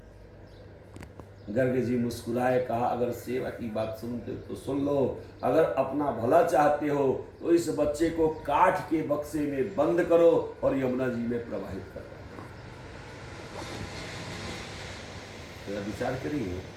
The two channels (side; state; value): both; identical; correlation 1.00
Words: गर्ग जी मुस्कुराए, कहा अगर सेवा की बात सुनते तो सुन लो, अगर अपना भला चाहते हो तो इस बच्चे को काठ के बक्से में बंद करो और यमुना जी में प्रवाहित करो। तो विचार करिए,